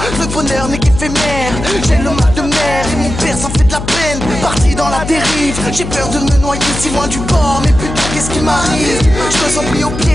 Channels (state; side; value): noise; left; hum, 7 dB below the sound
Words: le bonheur n'est qu'éphémère? J'ai le mal de mer et mon père s'en fait de la peine. Parti dans la dérive, j'ai peur de me noyer si loin du bord. Mais putain, qu'est-ce qui m'arrive? Je me sens pris au